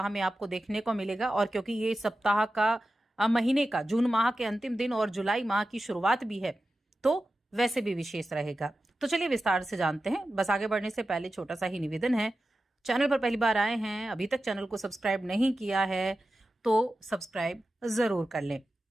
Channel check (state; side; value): normal; both; correlation 0.93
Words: में आपको देखने को मिलेगा। और क्योंकि ये सप्ताह का, महीने का, जून माह के अंतिम दिन और जुलाई माह की शुरुआत भी है, तो वैसे भी विशेष रहेगा। तो चलिए विस्तार से जानते हैं। बस आगे बढ़ने से पहले छोटा सा ही निवेदन है, चैनल पर पहली बार आए हैं, अभी तक चैनल को सब्सक्राइब नहीं किया है तो सब्सक्राइब जरूर कर लें।